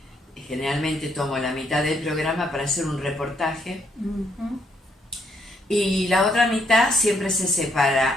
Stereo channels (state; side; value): normal; both; correlation 0.73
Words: generalmente tomo la mitad del programa para hacer un reportaje, y la otra mitad siempre se